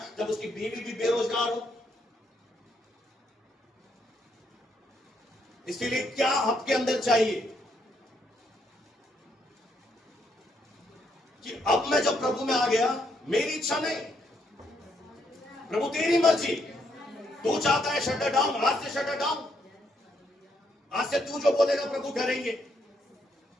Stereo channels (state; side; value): normal; both; correlation 0.75